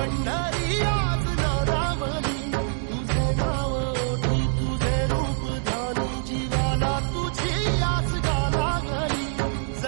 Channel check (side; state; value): left; silent; digital silence